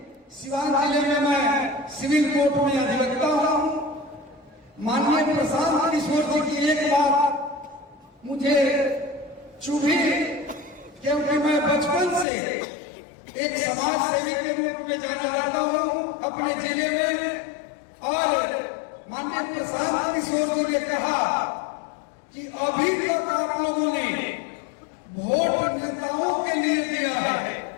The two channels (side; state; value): right; drops out; at 12.2 s